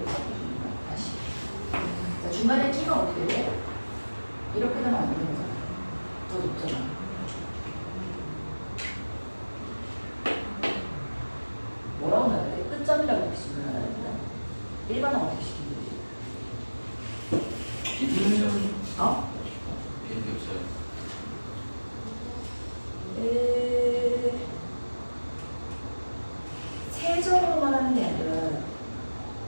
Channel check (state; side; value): inverted; both; correlation -1.00